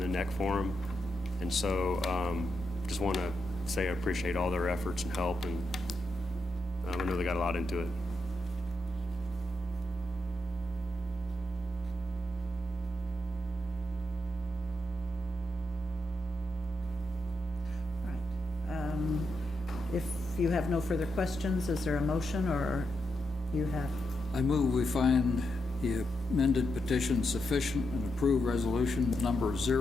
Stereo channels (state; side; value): normal; both; correlation 0.84